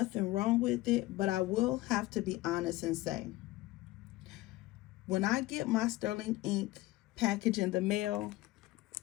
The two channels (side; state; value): right; quieter; 18.5 dB